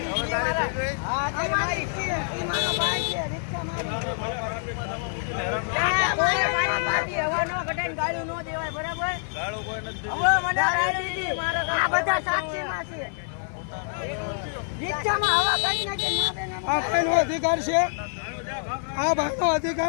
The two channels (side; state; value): right; silent; 60 dB below the other